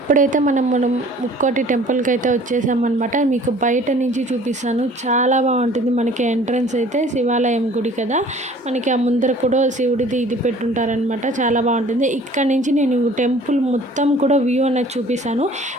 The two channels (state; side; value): normal; both; correlation 0.50